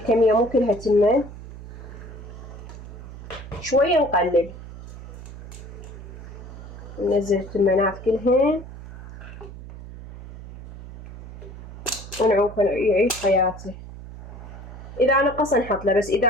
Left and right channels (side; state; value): right; noise; hum, 14 dB below the sound